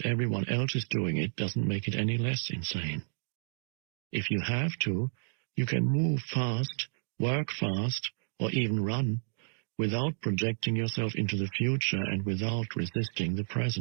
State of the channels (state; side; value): silent; left; digital silence